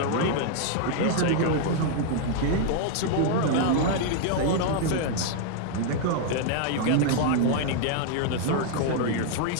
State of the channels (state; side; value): different; both; correlation 0.00